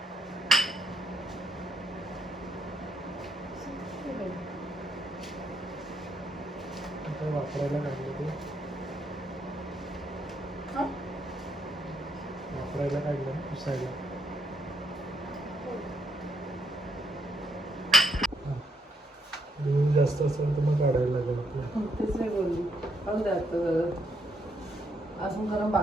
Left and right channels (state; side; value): normal; both; correlation 0.75